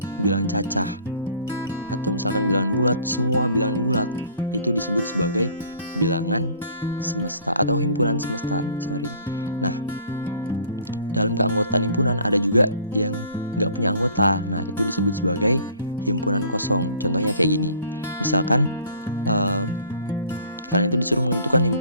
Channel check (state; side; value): inverted; both; correlation -0.52